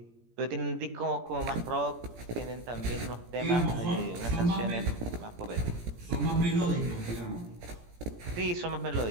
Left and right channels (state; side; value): late; left; 17 ms